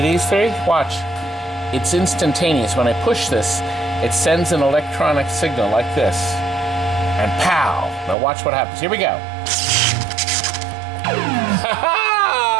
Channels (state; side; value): drops out; left; at 8.2 s